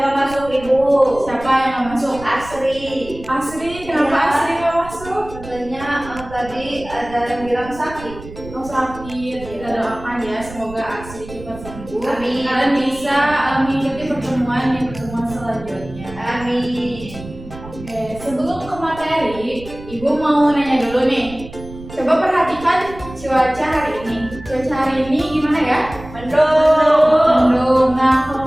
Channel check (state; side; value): noise; right; rumble, 15 dB below the sound